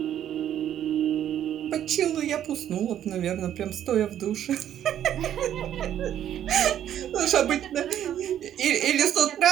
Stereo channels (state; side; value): quieter; left; 10.7 dB